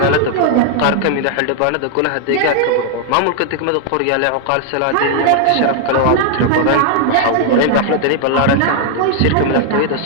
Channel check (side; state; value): both; different; correlation 0.00